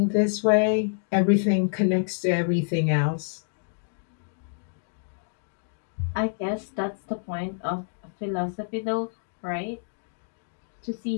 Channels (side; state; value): right; silent; digital silence